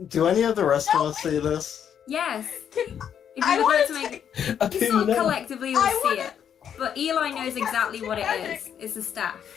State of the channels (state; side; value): quieter; right; 8.6 dB